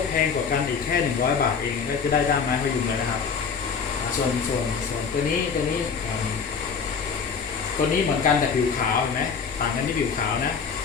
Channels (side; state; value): right; quieter; 5.9 dB